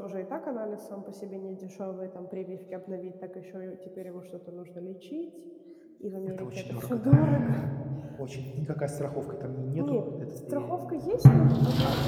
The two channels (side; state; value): both; identical; correlation 1.00